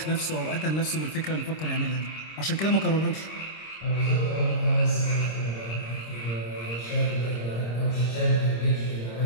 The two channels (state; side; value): late; right; 26 ms